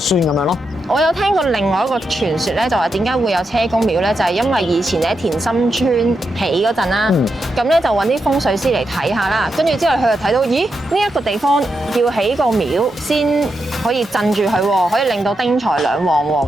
咁樣咯。我有聽過另外一個傳說咧，就話點解會有車公廟咧？就係因為以前喺田心村起嗰陣啦，咁咧就揾啲風水師嚟睇下啦，跟住之後佢就睇到，咦呢一個地方要起個廟先可以鎮住佢喎，可以令到丁財兩旺喎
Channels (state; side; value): normal; both; correlation 0.85